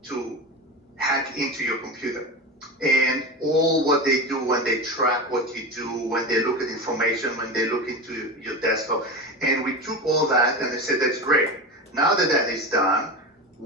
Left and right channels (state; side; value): normal; both; correlation 0.24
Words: to hack into your computer. And all what they do when they track what you do, when they look at information, when they look into your desktop. And we took all that and they said, that's great. Now that that is done,